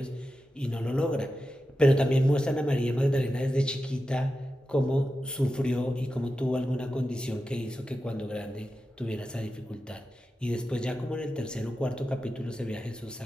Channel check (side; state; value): both; normal; correlation 0.91